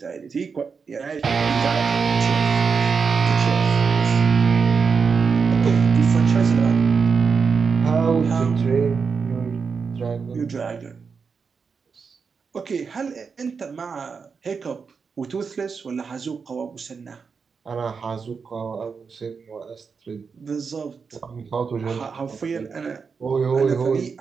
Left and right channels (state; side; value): quieter; left; 5.5 dB